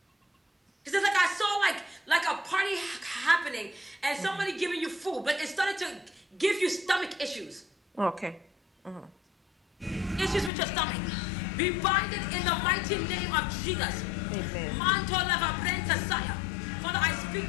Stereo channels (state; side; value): drops out; right; at 10.5 s